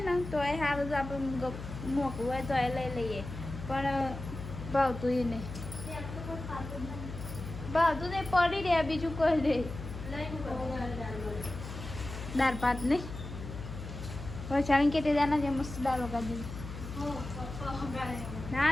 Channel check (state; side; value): noise; left; hum, 9 dB below the sound